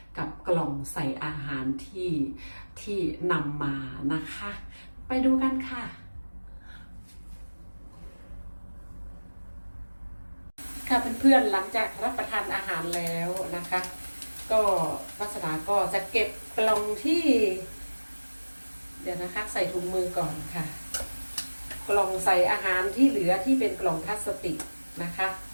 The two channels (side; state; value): both; inverted; correlation -1.00